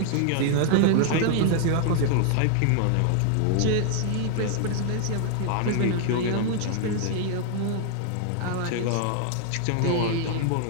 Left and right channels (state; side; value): different; both; correlation 0.00